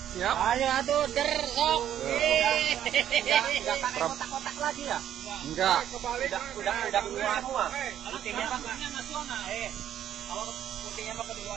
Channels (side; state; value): left; quieter; 10.6 dB